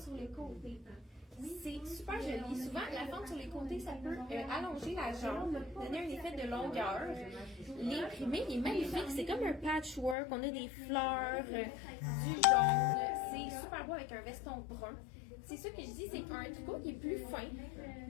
sur les côtés. C'est super joli. Souvent, la fente sur les côtés, ça peut allonger la jambe, donner un effet de longueur. L'imprimé est magnifique. C'est comme un patchwork. On a des fleurs, du jaune. C'est super beau avec un veston brun. C'est ça que je dis, c'est un tricot qui est plus fin.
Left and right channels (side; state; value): right; drops out; at 10.2 s